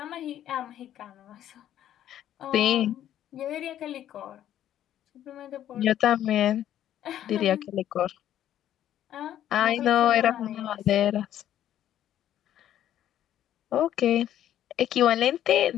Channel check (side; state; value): right; quieter; 11.5 dB